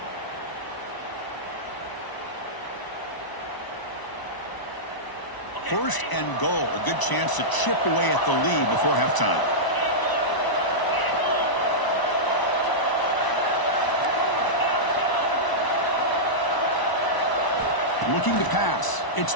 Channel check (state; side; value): late; right; 1.0 ms